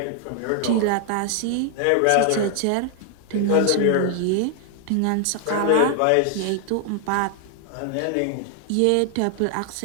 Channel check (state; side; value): different; both; correlation 0.00